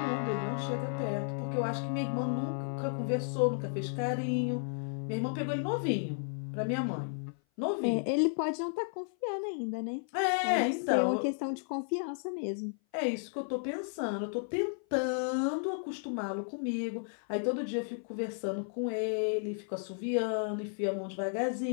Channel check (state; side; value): silent; right; 56 dB below the other